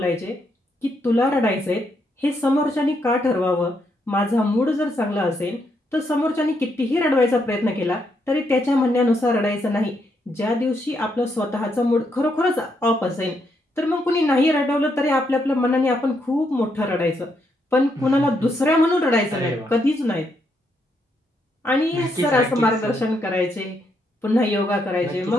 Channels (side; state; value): both; normal; correlation 0.77